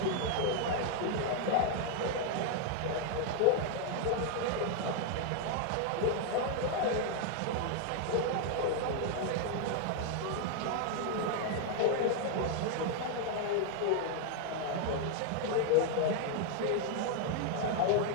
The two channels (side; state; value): both; different; correlation 0.00